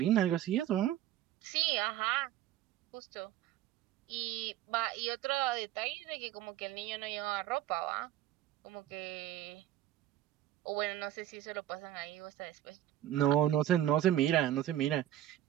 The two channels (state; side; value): quieter; left; 12.9 dB